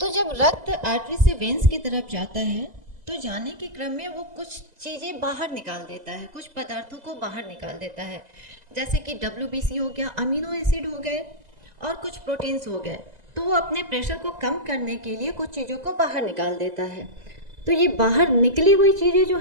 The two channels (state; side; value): late; left; 2.0 ms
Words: जब रक्त आर्टरी से वेन्स की तरफ जाता है तो जाने के क्रम में वो कुछ चीज़ें बाहर निकाल देता है, कुछ पदार्थों को बाहर निकाल देता है, जैसे कि WBC हो गया, अमीनो एसिड हो गए और कुछ प्रोटीन्स हो गए। तो वो अपने प्रेशर को कम करने के लिए कुछ चीज़ों को बाहर निकाल देता है। तो ये बाहर निकली हुई चीज़ें जो